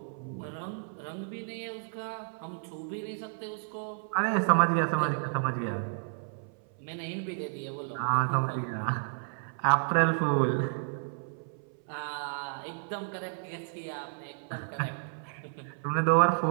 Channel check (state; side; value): silent; left; 57 dB below the other